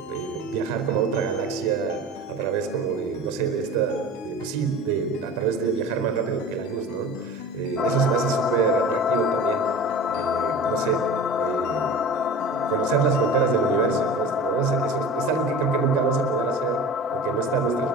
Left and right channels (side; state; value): both; normal; correlation 0.36